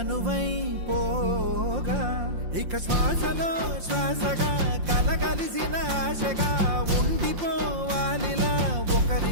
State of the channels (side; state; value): left; late; 5.7 ms